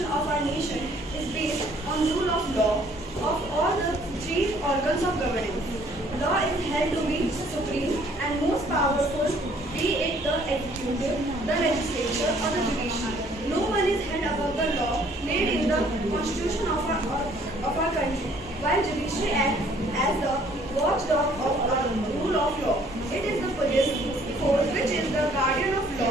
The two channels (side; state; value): both; normal; correlation 0.60